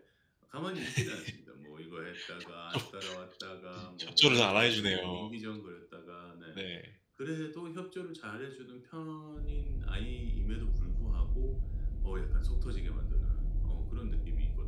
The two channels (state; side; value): identical; both; correlation 1.00